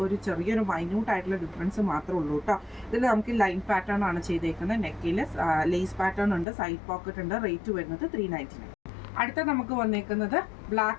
ഒരു ചെറിയൊരു മൈന്യൂട്ട് ആയിട്ടുള്ള ഡിഫറൻസ് മാത്രമേ ഉള്ളൂ കേട്ടോ. ഇതിൽ നമുക്ക് ലൈൻ പാറ്റേൺ ആണ് ചെയ്തേക്കുന്നത്. നെക്കിൽ ലേസ് പാറ്റേൺ ഉണ്ട്. സൈഡ് പോക്കറ്റ് ഉണ്ട്. റേറ്റ് വരുന്നത് 399. അടുത്ത നമുക്ക് വന്നേക്കുന്നത്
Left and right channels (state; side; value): drops out; right; at 6.5 s